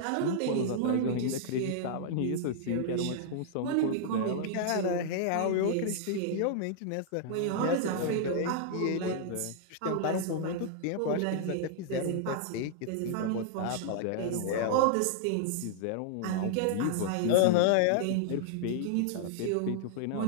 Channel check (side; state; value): both; different; correlation -0.01